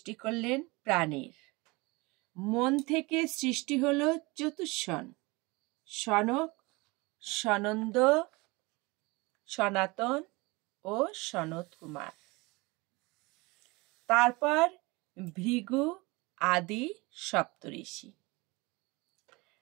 করলেন প্রাণীর। মন থেকে সৃষ্টি হলো চতুষ্ষণ: সনক, সনন্দ, সনাতন ও সনত কুমার। তারপর ভৃগু আদি সপ্তঋষি।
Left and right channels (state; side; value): quieter; left; 24.6 dB